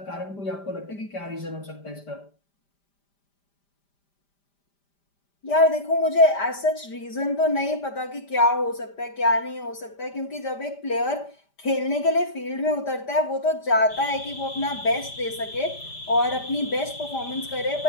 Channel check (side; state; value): right; late; 5.0 ms